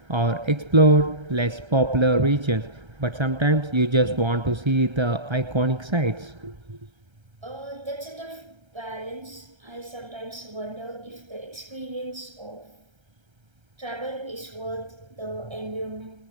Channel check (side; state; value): left; late; 1.3 ms